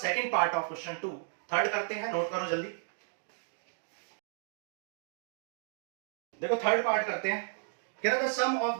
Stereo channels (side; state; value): left; silent; digital silence